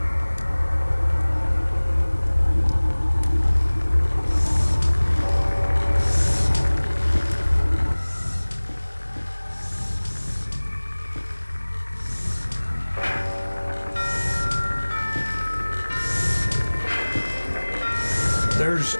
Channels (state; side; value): inverted; both; correlation -1.00